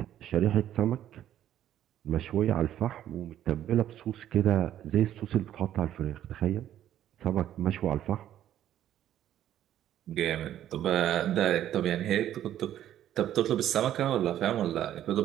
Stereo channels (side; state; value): left; quieter; 11.6 dB